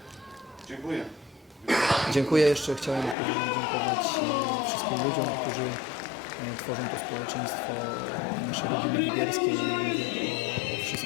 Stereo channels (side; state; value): right; drops out; at 3.2 s